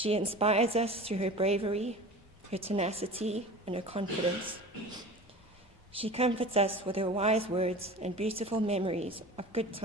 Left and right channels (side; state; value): both; normal; correlation 0.37